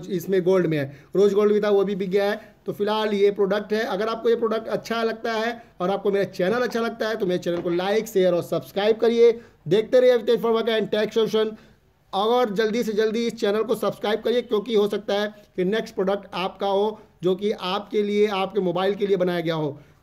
इसमें गोल्ड में है। रोज गोल्ड भी था, वो भी बिक गया है। तो फिलहाल ये प्रोडक्ट है। अगर आपको ये प्रोडक्ट अच्छा लगता है और आपको मेरा चैनल अच्छा लगता है तो मेरे चैनल को लाइक, शेयर और सब्सक्राइब करिए। देखते रहिए अवितेज फंवर्क्स&टेक सोल्यूशन। और जल्दी से जल्दी इस चैनल को सब्सक्राइब करिए, क्योंकि हो सकता है कि नेक्स्ट प्रोडक्ट आपका हो जो कि आपके लिए, आपके मोबाइल के लिए बनाया गया हो।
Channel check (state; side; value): identical; both; correlation 1.00